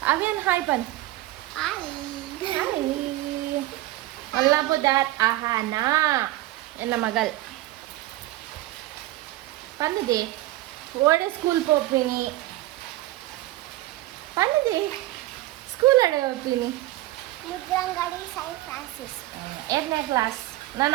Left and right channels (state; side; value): quieter; left; 17.1 dB